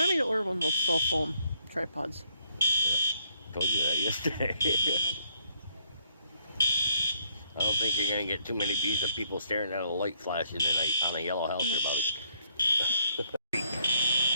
me to order one of those cell phone tripods. Yeah, told you that yesterday. I don't think you're going to get too many views of people staring at a light flashing on a yellow house or about it.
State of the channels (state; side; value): inverted; both; correlation -0.72